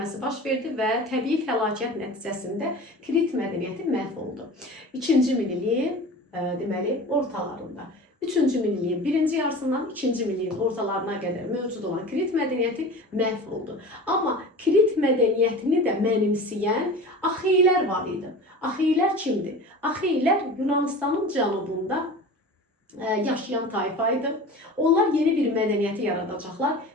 baş verdi və təbii fəlakət nəticəsində Krit mədəniyyəti məhv oldu. 2-ci minilliyin deməli ortalarında. 3-cü minilliyin birinci yarısından 2-ci minilliyin ortalarına qədər mövcud olan Krit mədəniyyəti məhv oldu. Amma Krit mədəniyyətini də mənimsəyən Axeylər var idi. Axeylər kimdir? Axeylər Yunanistanın cənubunda yaşayan tayfa idi. Onlar yeni bir mədəniyyəti yaradacaqlar,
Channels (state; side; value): normal; both; correlation 0.35